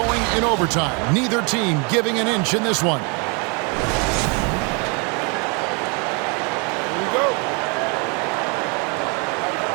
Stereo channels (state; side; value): quieter; left; 33.3 dB